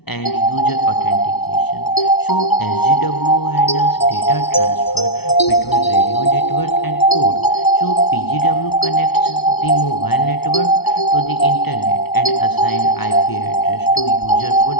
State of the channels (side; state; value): right; late; 0.98 ms